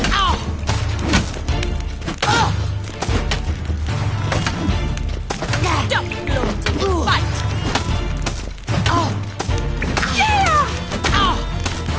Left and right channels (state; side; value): identical; both; correlation 1.00